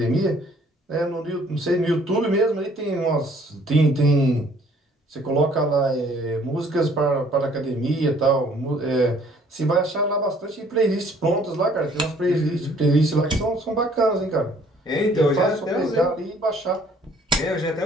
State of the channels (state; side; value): normal; both; correlation 0.59